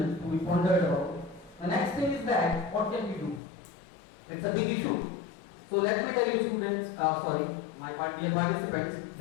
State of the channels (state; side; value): drops out; right; at 3.4 s